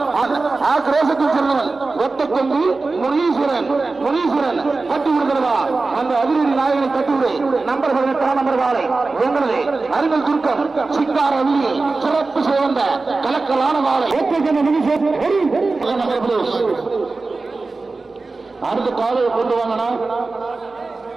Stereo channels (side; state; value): left; quieter; 3.7 dB